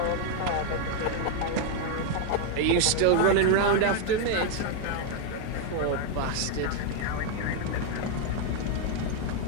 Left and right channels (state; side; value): different; both; correlation 0.00